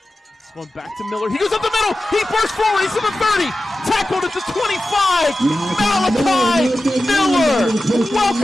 going back to Miller. He goes up the middle. He bursts forward. He's to the 30. Tackled at the 25. Malachi Miller.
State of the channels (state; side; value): normal; both; correlation 0.93